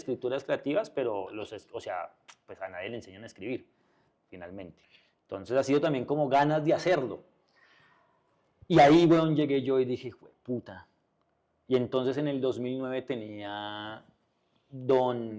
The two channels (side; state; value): both; identical; correlation 1.00